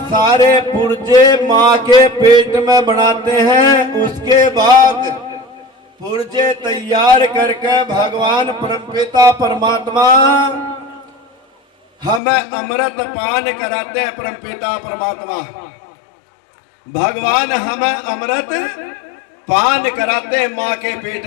सारे पुर्जे माँ के पेट में बनाते हैं। उसके बाद पुर्जे तैयार करके भगवान परमपिता परमात्मा हमें अमृत पान कराते हैं। परमपिता परमात्मा भगवान हमें अमृत पान कराते हैं माँ के पेट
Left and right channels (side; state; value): right; drops out; at 12.2 s